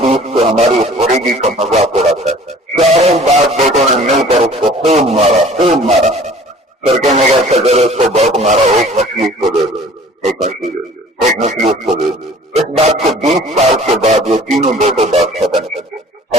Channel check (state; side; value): normal; both; correlation 0.49